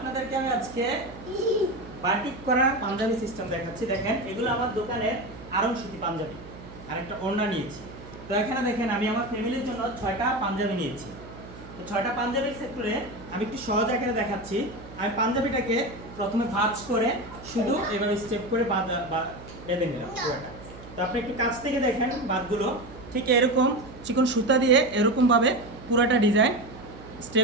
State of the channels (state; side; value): noise; right; hum, 16 dB below the sound